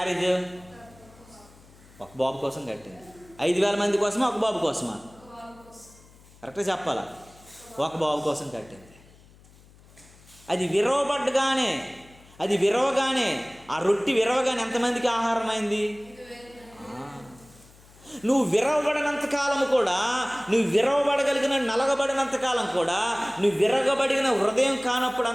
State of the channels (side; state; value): left; noise; hum, 25 dB below the sound